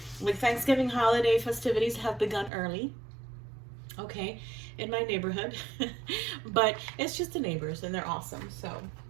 holiday festivities have begun early. Okay, in my neighborhood. But it's just the neighbors, and they're awesome. So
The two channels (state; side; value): drops out; left; at 2.5 s